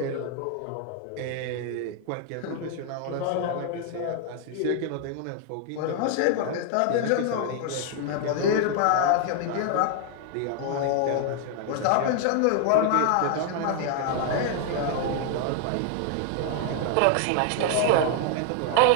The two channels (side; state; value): both; different; correlation 0.00